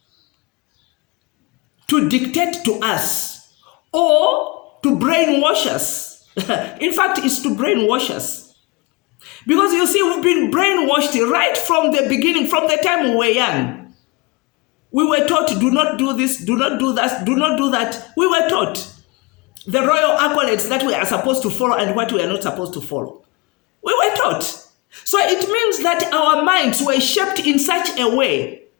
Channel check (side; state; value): right; quieter; 25.3 dB